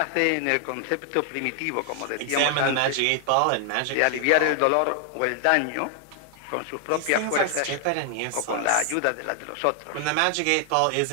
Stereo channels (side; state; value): both; different; correlation 0.00